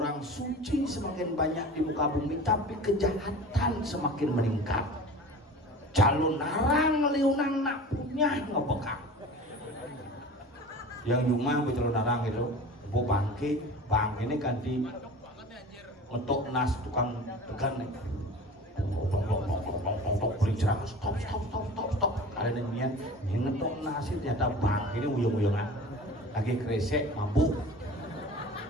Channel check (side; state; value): both; normal; correlation 0.38